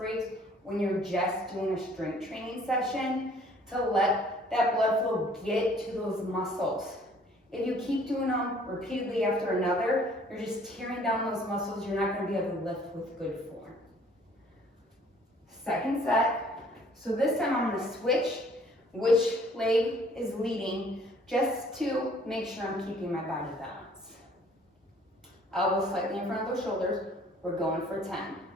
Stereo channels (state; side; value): normal; both; correlation 0.57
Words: when you're just doing a strength training session to let that blood flow get to those muscles. If you keep doing them repeatedly after another, you're just tearing down those muscles. You're not going to be able to lift with good form. Second set. So this time I'm going to switch which leg is leading just to make sure I'm keeping my body balanced. Elbows slightly in front of those shoulders. We're going for 10.